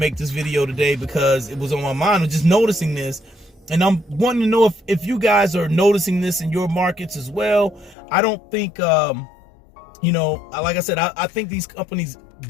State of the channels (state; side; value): drops out; right; at 8.0 s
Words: this video today because it was on my mind. I was just noticing this, and I'm wanting to know if you guys are noticing this in your markets as well. I don't think, you know, like I said, I think these companies